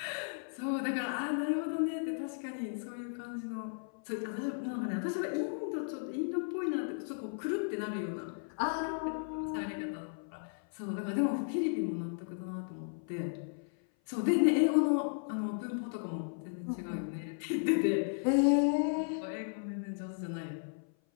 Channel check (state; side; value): silent; right; 54 dB below the other